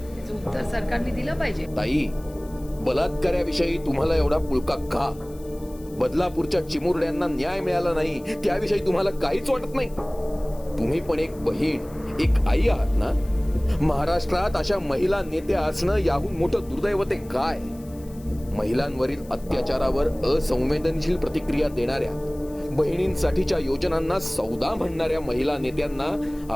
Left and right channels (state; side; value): noise; left; hiss, 24 dB below the sound